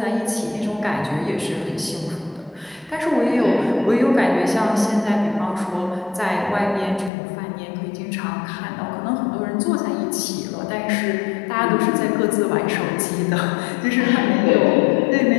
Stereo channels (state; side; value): drops out; right; at 7.1 s